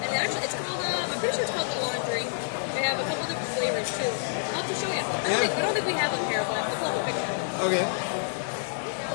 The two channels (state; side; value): silent; right; digital silence